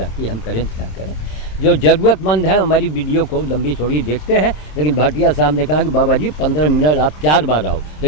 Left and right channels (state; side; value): late; right; 27 ms